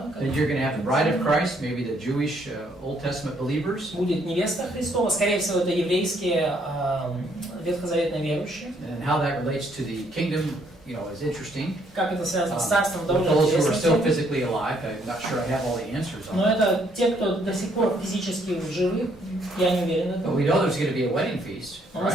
Then you're going to have the bride of Christ, maybe the Jewish Old Testament believers. Будет невеста Христова, скорее всего, это еврейские ветхозаветные верующие. And how that relates to the kingdom, you know, is interesting. Как это связано с царством, With довольно those who are still интересно. physically alive, I'm not sure I have all the answers on Но that. это те, кто до сих пор физически живы, я не уверен в But этом. we know there's going to be a wedding feast, Но мы right?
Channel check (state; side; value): normal; both; correlation 0.68